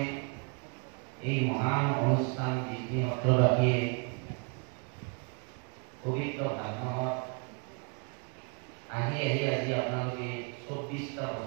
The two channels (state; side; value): quieter; left; 35.9 dB